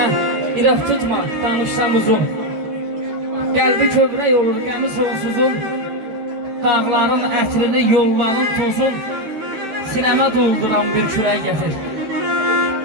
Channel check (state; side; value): late; left; 13 ms